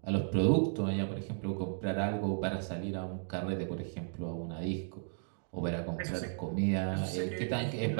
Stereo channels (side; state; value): left; silent; digital silence